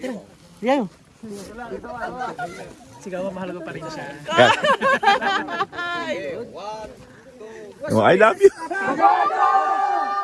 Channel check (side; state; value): both; identical; correlation 1.00